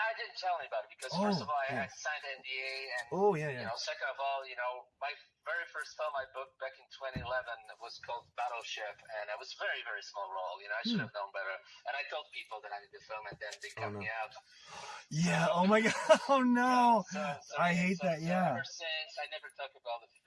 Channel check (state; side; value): identical; both; correlation 1.00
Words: didn't tell anybody because first of all, I signed NDA, and second of all, my very first film I booked back in 2011 was called Battleship, and it was a very, very small role. I should have known better, and I told people that I needed to film, and then they cut me out. Yeah. Oh my God. Oh no. I hate that. Yeah. Ever since, I never talk about